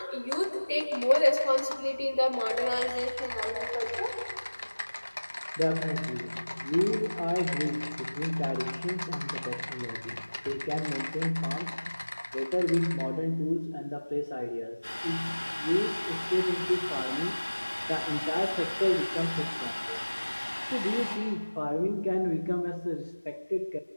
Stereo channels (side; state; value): both; inverted; correlation -1.00